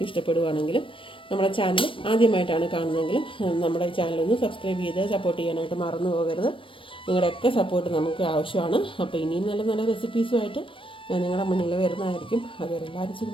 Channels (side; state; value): right; late; 0.25 ms